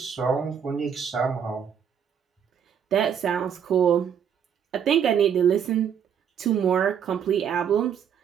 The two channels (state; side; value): quieter; left; 8.1 dB